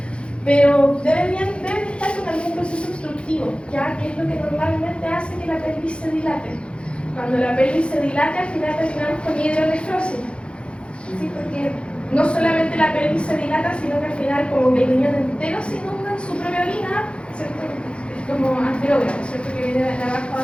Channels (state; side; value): late; right; 0.058 ms